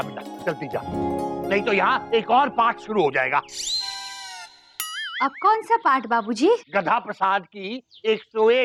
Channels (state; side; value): identical; both; correlation 1.00